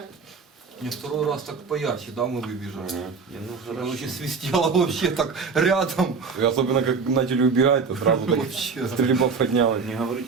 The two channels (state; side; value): quieter; left; 5.1 dB